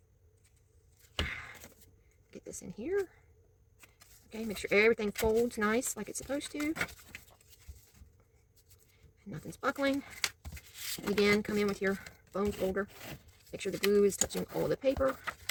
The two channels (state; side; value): identical; both; correlation 1.00